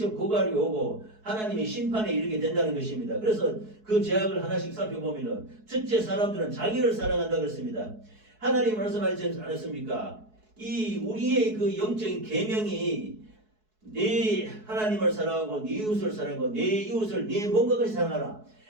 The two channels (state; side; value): late; left; 4.7 ms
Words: 고갈이 오고 하나님의 심판에 이르게 된다는 것입니다. 그래서 그 죄악을 하나씩 살펴보면은 첫째 사람들은 자기를 사랑한다 그랬습니다. 하나님 말씀하지 않았습니까? 이 우리의 그 영적인 계명이 네 하나님을 사랑하고 네 이웃을 사랑하고 네 이웃을 네 몸과 같이 사랑하라.